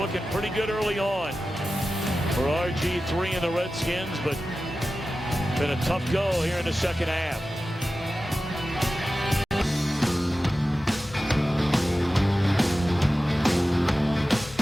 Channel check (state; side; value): normal; both; correlation 0.94